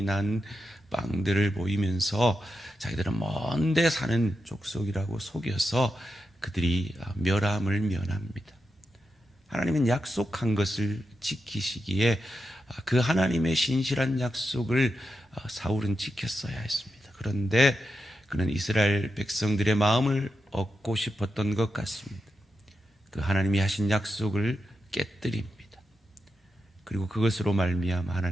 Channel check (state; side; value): normal; both; correlation 0.88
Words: 난 빵들을 보이면서 자기들은 먼데 사는 족속이라고 속여서 그들이 멸함을 면합니다. 하나님은 약속한 것을 지키시기에 그 하나님의 신실한 약속을 사울은 지켰어야 했습니다. 그런데 그는 이스라엘 백성들의 마음을 얻고 싶었던 것 같습니다. 그 하나님이 하신 약속을 깨뜨립니다. 그리고 그것으로 말미암아